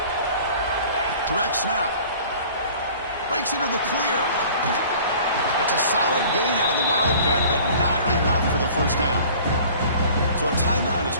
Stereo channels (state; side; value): inverted; both; correlation -0.47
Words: Direct snap. Breaks into the clear. That's a solid gain out of the Wildcat, but not enough for the first down. So a timeout